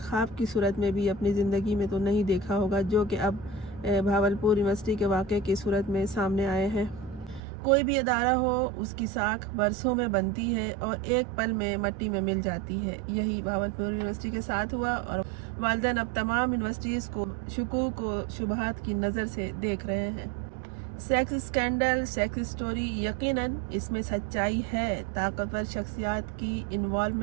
ख्वाब की सूरत में भी अपनी ज़िंदगी में तो नहीं देखा होगा, जो कि अब भावलपुर यूनिवर्सिटी के वाक़े की सूरत में सामने आए हैं। कोई भी अदारा हो, उसकी साख बरसों में बनती है और एक पल में मिट्टी में मिल जाती है। यही भावलपुर यूनिवर्सिटी के साथ हुआ और वालिदैन अब तमाम यूनिवर्सिटीज़ को शुकूक व शुबहात की नज़र से देख रहे हैं। सेक्स स्कैंडल, सेक्स स्टोरी, यकीनन इसमें सच्चाई है, ताकतवर शख्सियात की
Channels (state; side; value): drops out; left; at 7.4 s